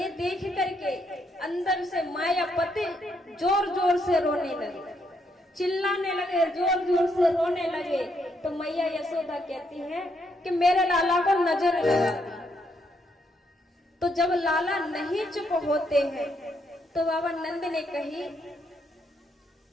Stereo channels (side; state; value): both; normal; correlation 0.75